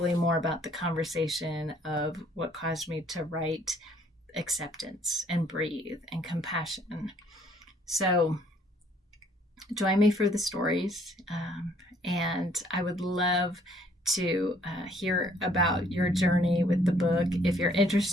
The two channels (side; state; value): both; normal; correlation 0.62